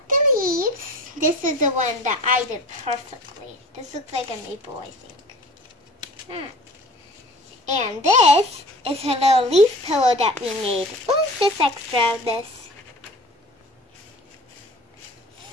the leaves. This is the one that I did perfectly. This looks like a maple, I think. And this is her little leaf pillow that we made. Oh, just extra of this.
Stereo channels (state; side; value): normal; both; correlation 0.41